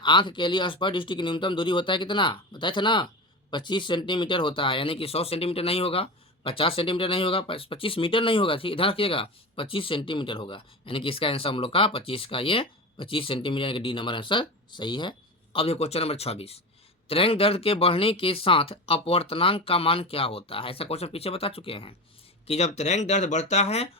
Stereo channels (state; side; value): normal; both; correlation 0.25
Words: के लिए स्पर्श दृष्टि की न्यूनतम दूरी होता है कितना, बताए थे ना 25 सेंटीमीटर होता है, यानी कि 100 सेंटीमीटर नहीं होगा, 50 सेंटीमीटर नहीं होगा, 25 मीटर नहीं होगा, ठीक ध्यान रखिएगा 25 सेंटीमीटर होगा, यानी कि इसका आंसर हम लोग का 25 का ये 25 सेंटीमीटर, यानी कि डी नंबर आंसर सही है। अब ये क्वेश्चन नंबर 26, तरंग दर्द के बढ़ने के साथ अपवर्तनांक का मान क्या होता है। ऐसा क्वेश्चन पीछे बता चुके हैं कि जब तरंग दर्द बढ़ता है